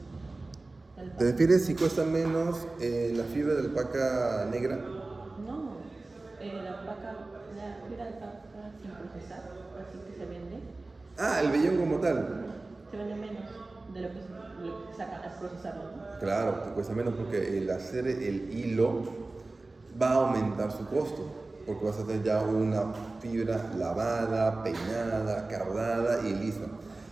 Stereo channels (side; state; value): left; quieter; 3.2 dB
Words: ¿Te refieres si cuesta menos la fibra de alpaca negra? No, la fibra de alpaca sin procesar, así que se vende. Ah, el vellón como tal. Se vende menos de lo que se saca al procesarlo, ¿no? Claro, te cuesta menos porque el hacer el hilo va a aumentar su costo. Porque vas a hacer ya una fibra lavada, peinada, cardada y lista.